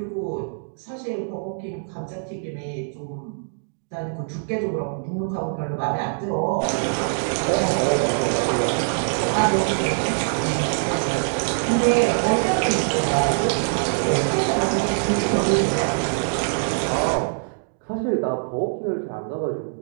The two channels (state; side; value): silent; left; digital silence